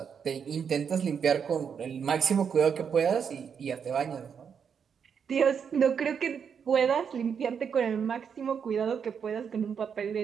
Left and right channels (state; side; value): quieter; left; 7.0 dB